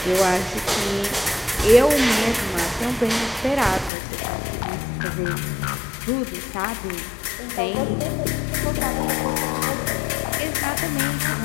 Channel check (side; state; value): right; drops out; at 3.9 s